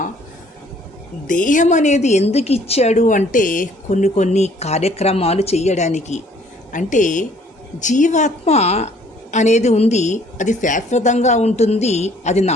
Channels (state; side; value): normal; both; correlation 0.59